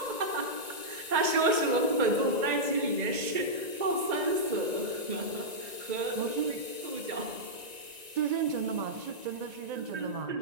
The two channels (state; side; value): late; left; 1.9 ms